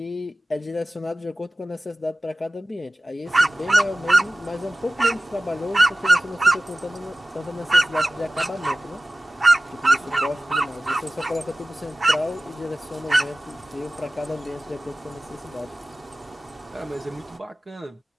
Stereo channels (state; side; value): normal; both; correlation 0.96